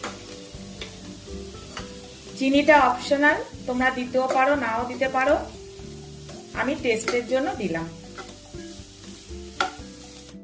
চিনিটা অপশনাল, তোমরা দিতেও পারো নাও দিতে পারো, আমি টেস্টের জন্য দিলাম।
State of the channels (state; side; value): identical; both; correlation 1.00